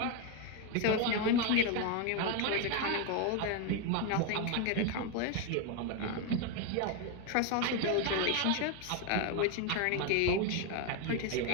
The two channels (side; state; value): both; different; correlation 0.02